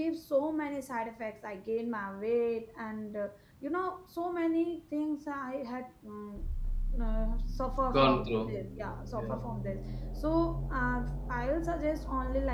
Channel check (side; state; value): both; identical; correlation 1.00